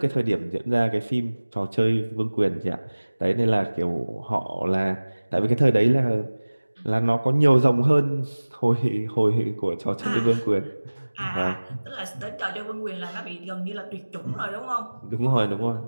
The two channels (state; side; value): inverted; both; correlation -1.00